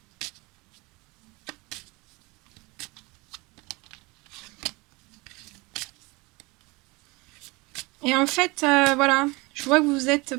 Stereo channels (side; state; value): left; quieter; 25.0 dB